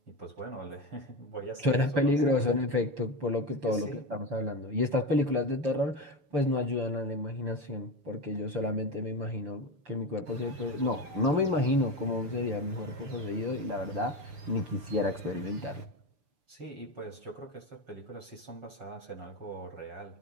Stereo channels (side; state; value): left; late; 6.9 ms